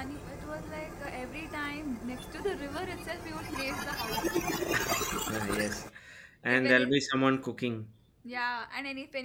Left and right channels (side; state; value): both; identical; correlation 1.00